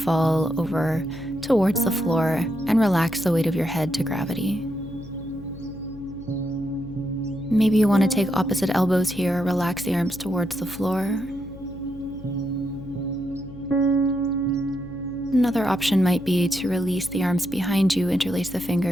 over towards the floor and relax the weight of your head to gravity. Maybe you want to take opposite elbows here, relax the arms towards the floor. Another option might be to release the arms behind you, interlace the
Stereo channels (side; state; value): left; noise; hum, 16 dB below the sound